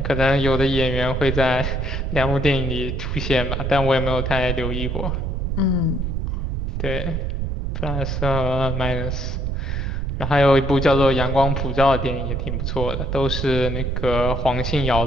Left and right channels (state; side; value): noise; right; rumble, 2 dB below the sound